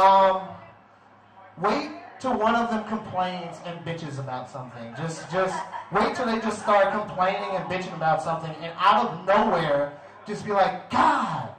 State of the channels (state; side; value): identical; both; correlation 1.00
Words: Wait till one of them complains and bitches about something. Just wait till they just start complaining and bitching about something, and out of nowhere, just be like, God,